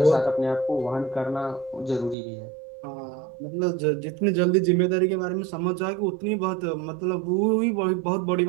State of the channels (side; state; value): left; drops out; at 2.1 s